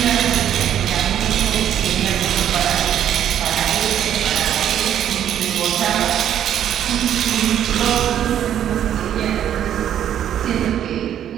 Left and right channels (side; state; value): left; quieter; 10.3 dB